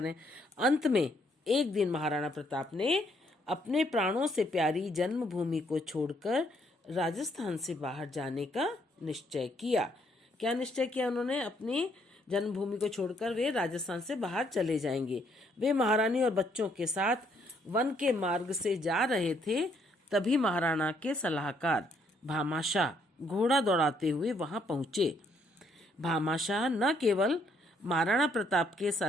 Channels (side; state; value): both; normal; correlation 0.70